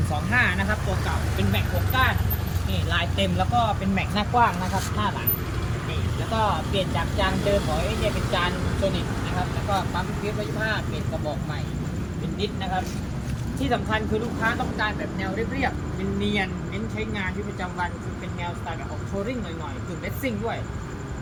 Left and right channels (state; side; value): identical; both; correlation 1.00